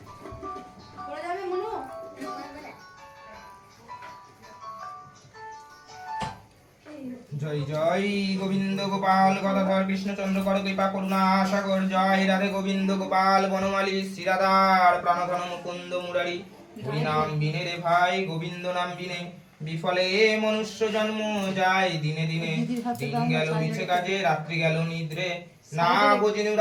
পড়ে যাবে মনু। জয় জয় গোবিন্দ গোপাল গদাধর কৃষ্ণচন্দ্র কর কৃপা করুণা সাগর জয় রাধে গোবিন্দ গোপাল বনমালী শ্রীরাধার প্রাণধন মুকুন্দ মুরারি হরি নাম বিনে রে ভাই গোবিন্দ নাম বিনে বিফলে মনুষ্য জন্ম যায় দিনে দিনে দিন গেল মিছে কাজে রাত্রি গেল নিদ্রে না বোঝিনু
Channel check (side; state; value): both; identical; correlation 1.00